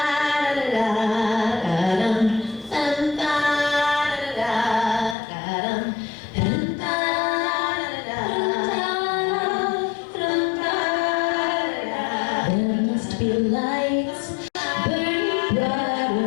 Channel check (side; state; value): right; drops out; at 5.2 s